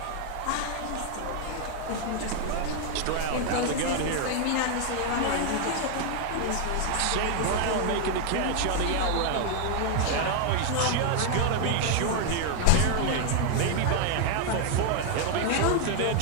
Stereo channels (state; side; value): different; both; correlation 0.00